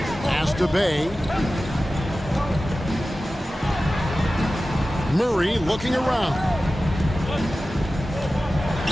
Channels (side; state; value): both; normal; correlation 0.95